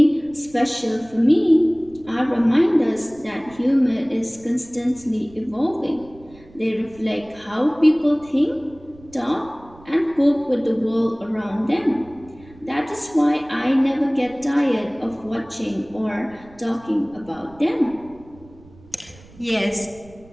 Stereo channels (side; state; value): right; noise; rumble, 24 dB below the sound